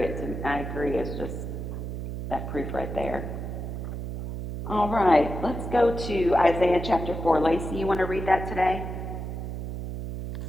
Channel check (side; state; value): right; noise; hum, 6 dB below the sound